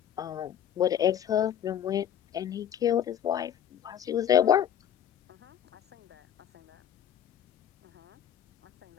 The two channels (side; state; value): right; quieter; 9.9 dB